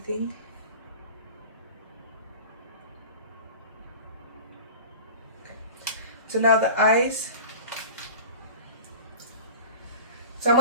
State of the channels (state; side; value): inverted; both; correlation -0.35